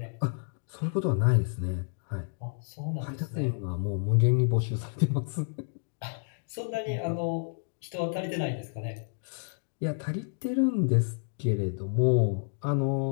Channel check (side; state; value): right; silent; digital silence